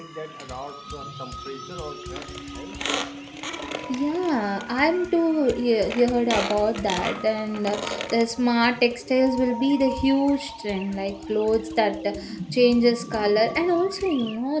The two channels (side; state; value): both; identical; correlation 1.00